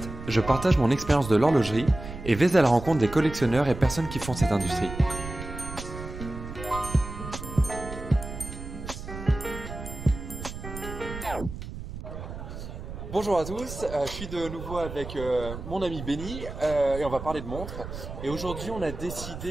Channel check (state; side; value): noise; right; rumble, 10 dB below the sound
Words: je partage mon expérience de l'horlogerie et vais à la rencontre des collectionneurs et personnes qui font cette industrie. Bonjour à tous, je suis de nouveau avec mon ami Benny et on va parler de montres. Et aujourd'hui on a